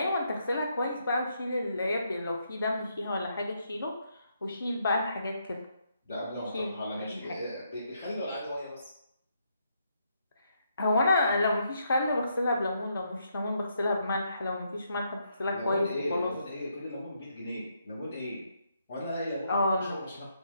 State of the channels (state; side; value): inverted; both; correlation -0.76